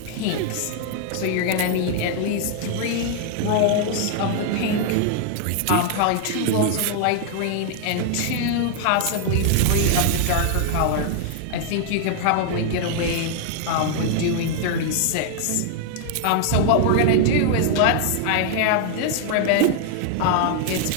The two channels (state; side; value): different; both; correlation 0.00